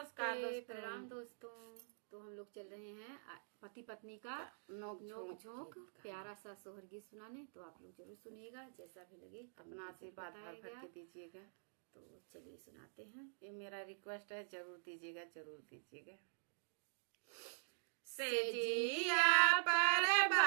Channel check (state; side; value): silent; left; digital silence